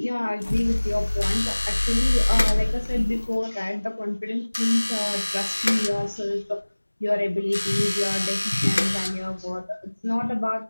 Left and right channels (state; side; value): inverted; both; correlation -1.00